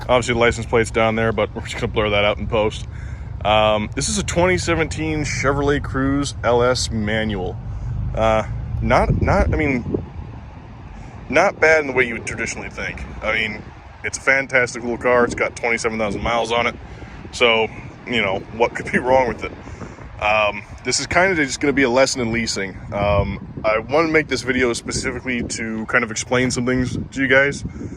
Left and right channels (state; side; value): identical; both; correlation 1.00